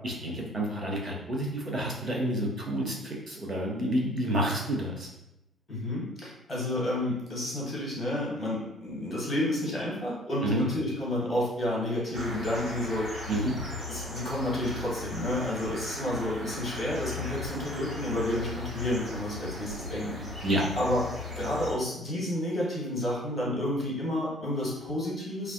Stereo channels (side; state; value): both; normal; correlation 0.51